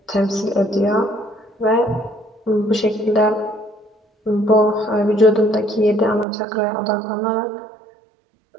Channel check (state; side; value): drops out; left; at 6.2 s